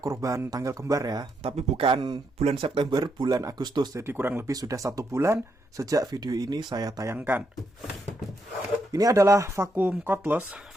tanggal kembar ya, tapi bukan bulan September, bulan Agustus. Jadi kurang lebih sudah 1 bulan sejak video ini saya tayangkan. Ini adalah vacuum cordless,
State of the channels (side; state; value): both; normal; correlation 0.79